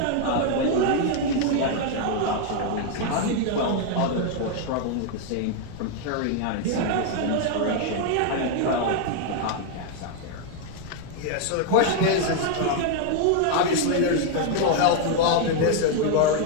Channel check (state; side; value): different; both; correlation 0.00